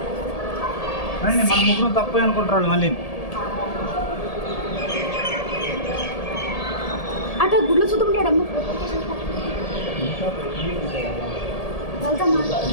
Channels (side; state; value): right; late; 1.8 ms